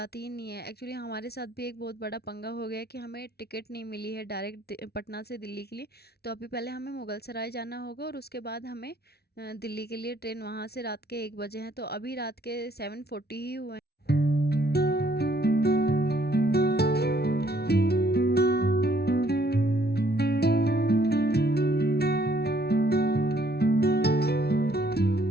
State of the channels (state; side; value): late; right; 0.46 ms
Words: ही नहीं है। एक्चुअली हमारे साथ भी एक बहुत बड़ा पंगा हो गया है कि हमें टिकट नहीं मिली है डायरेक्ट पटना से दिल्ली के लिए। तो अभी पहले हमें मुगल सराय जाना होगा और उसके बाद हमें दिल्ली के लिए ट्रेन वहाँ से रात के 1 बजे हैं। तो अभी रात के 7:40 ही हुए हैं।